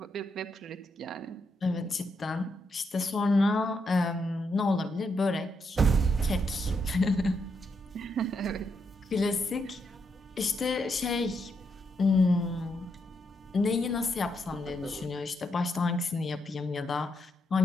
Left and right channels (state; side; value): normal; both; correlation 0.80